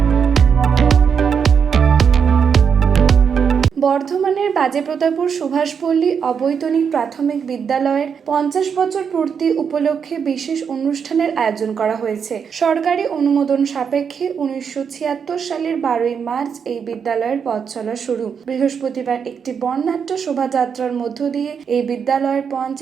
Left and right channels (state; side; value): quieter; left; 6.8 dB